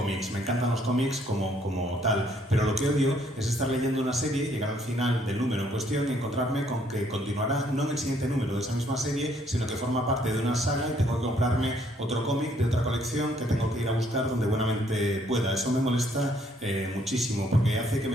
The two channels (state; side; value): normal; both; correlation 0.66